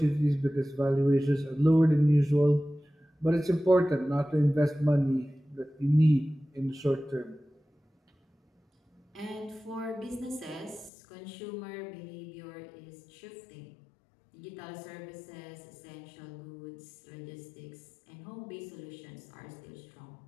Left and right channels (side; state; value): right; drops out; at 10.9 s